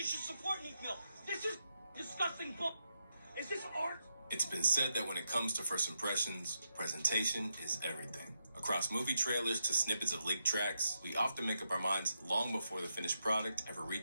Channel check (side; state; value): both; inverted; correlation -0.83